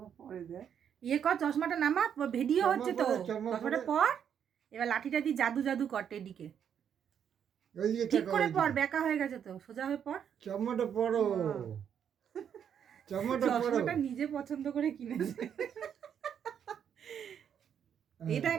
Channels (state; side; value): quieter; left; 8.4 dB